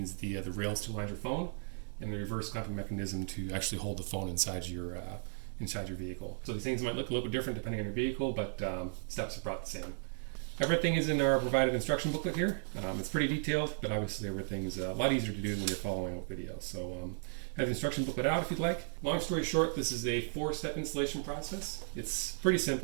the rails to align your phone, and the reverse clamping mechanism to actually hold the phone inside your vehicle. So these things might look a little bit different depending on your vehicle, but steps are about the same. Everything is in our provided instruction booklet here. It's pretty detailed, but obviously everything's a lot easier to do when you're following a video. So have the instruction booklet out if you'd like. Long story short, this is a 4-step installation process. It's pretty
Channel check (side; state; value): left; silent; digital silence